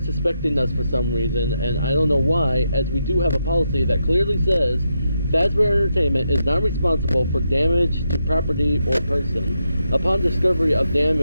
us for some reason, and I don't know why, as we do have a policy that clearly says Fazbear Entertainment is not responsible for damage to property or person. Upon discovery of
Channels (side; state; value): both; inverted; correlation -0.83